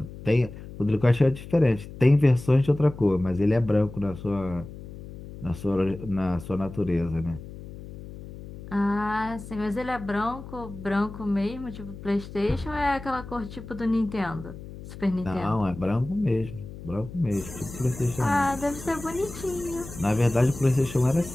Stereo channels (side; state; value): left; noise; hum, 14 dB below the sound